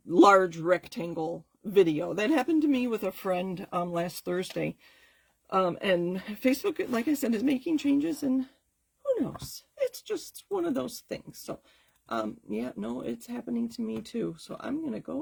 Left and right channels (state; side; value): identical; both; correlation 1.00